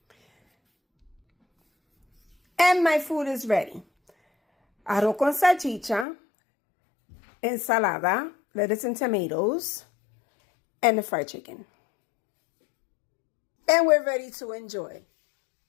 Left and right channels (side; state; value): right; drops out; at 6.1 s